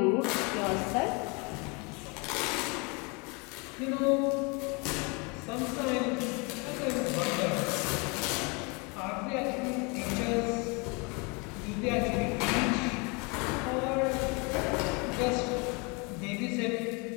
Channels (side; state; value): right; quieter; 30.3 dB